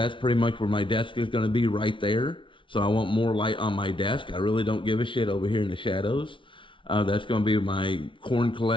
pretty much where my desk is going to be, right there. So I want more light on my desk. I really don't give a shit over here in the shadows. That's going to be my corn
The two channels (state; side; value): late; right; 0.25 ms